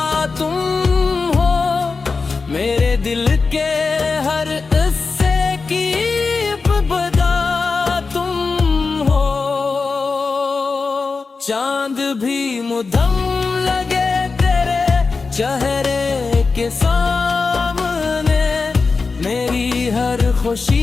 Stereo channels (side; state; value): right; quieter; 4.4 dB